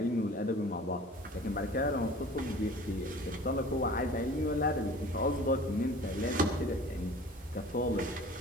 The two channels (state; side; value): normal; both; correlation 0.44